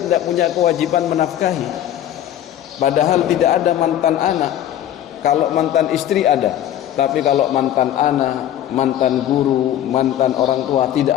punya kewajiban menafkahi. Padahal tidak ada mantan anak. Kalau mantan istri ada, tapi kalau mantan anak, mantan guru, mantan orang tua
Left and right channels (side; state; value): right; quieter; 11.4 dB